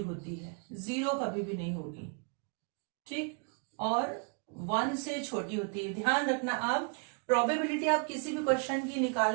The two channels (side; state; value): left; quieter; 37.9 dB